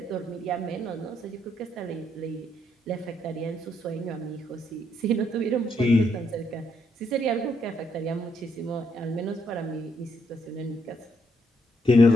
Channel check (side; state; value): both; normal; correlation 0.74